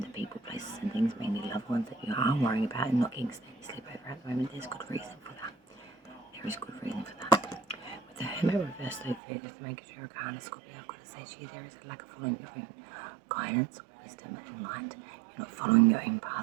the people, places and things, mainly loved ones, that you are worrying about and not getting steady sleep over at the moment. There's good reason for that. There is good reason for that. With the Hermit reverse, though, figures the Mecury Arcana, Scorpio, I've got to say to you, there is a lack of following your own guidance, wisdom and light. You're not following your own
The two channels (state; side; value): drops out; left; at 9.2 s